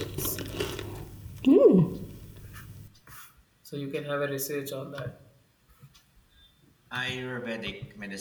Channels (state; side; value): identical; both; correlation 1.00